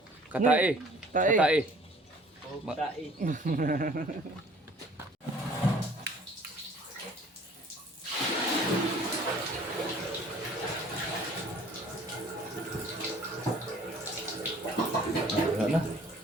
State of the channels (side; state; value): both; normal; correlation 0.53